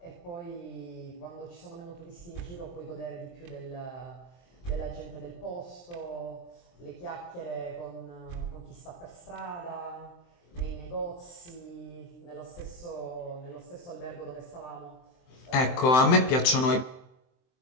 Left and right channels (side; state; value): right; late; 23 ms